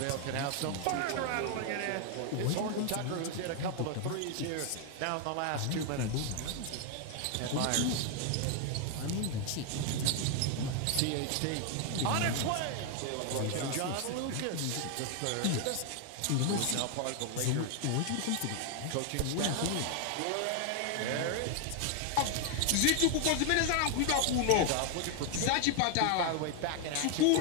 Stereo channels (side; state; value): both; different; correlation 0.00